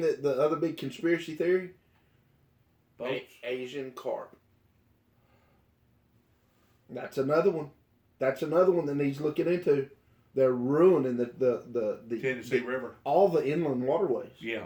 the other big conspiracy theory? Boats. Asian carp. That's another one. That's another one that needs looking into. They're ruining the Tennessee River. all the inland waterways. Yeah,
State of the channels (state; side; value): identical; both; correlation 1.00